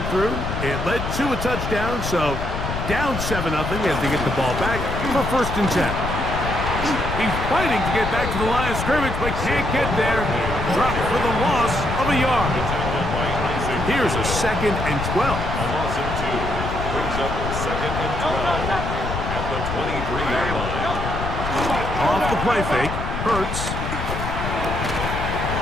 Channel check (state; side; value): noise; left; rumble, 4 dB below the sound